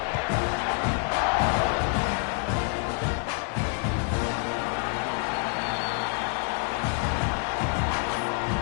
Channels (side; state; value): right; quieter; 38.7 dB